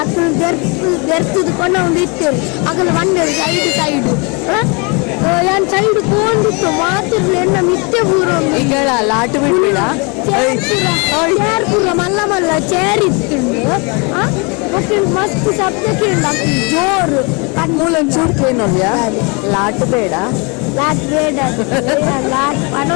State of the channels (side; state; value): right; quieter; 31.2 dB